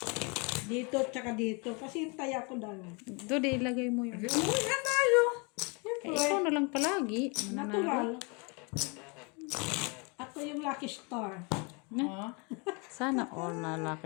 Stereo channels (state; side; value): quieter; right; 31.6 dB